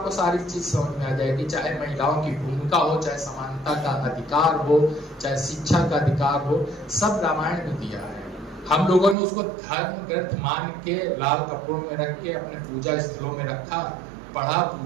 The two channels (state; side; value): drops out; left; at 9.2 s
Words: सारी चीज समझ में आ जाएगी। चाहे महिलाओं की भूमिका हो, चाहे समानता का अधिकार हो, चाहे शिक्षा का अधिकार हो, सब रामायण में दिया है। हम लोगों ने उसको धर्म ग्रंथ मान के लाल कपड़ों में रख के अपने पूजा स्थलों में रखा, पढ़ा,